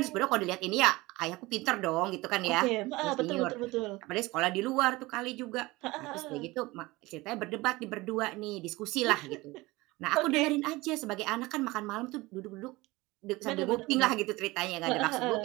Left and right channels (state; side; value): quieter; left; 21.1 dB